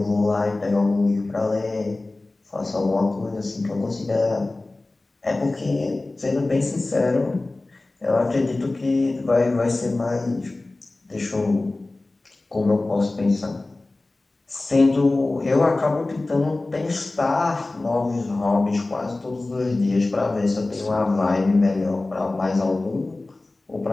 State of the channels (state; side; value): quieter; right; 3.0 dB